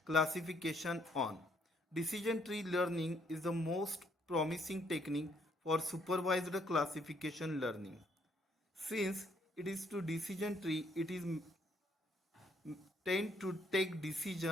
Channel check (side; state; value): both; normal; correlation 0.69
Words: classification on. Decision tree learning is the most promising technique for supervised classification learning. Since it is to decision tree, it is tend to take